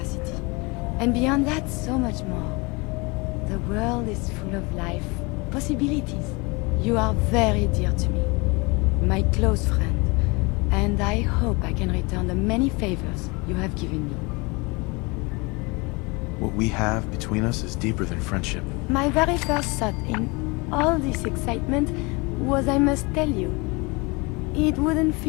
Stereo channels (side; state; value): right; quieter; 27.2 dB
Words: And beyond that, so much more. The world is full of life, possibilities. You are very dear to me. My close friend. And I hope I can return the many favors you have given me. What we have between us is deeper than friendship. My very first thought in all this excitement was I must tell you. It wouldn't